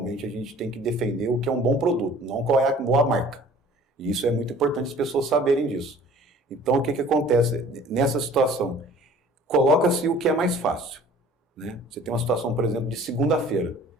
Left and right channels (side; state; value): both; normal; correlation 0.50